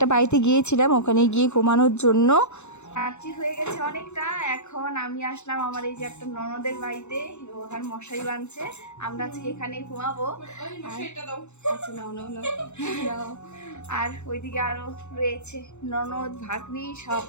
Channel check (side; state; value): right; late; 0.83 ms